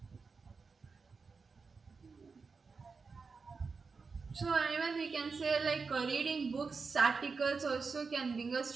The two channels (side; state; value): left; quieter; 4.7 dB